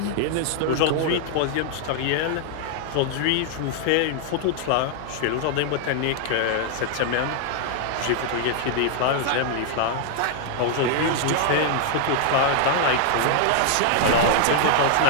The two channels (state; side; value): different; both; correlation -0.01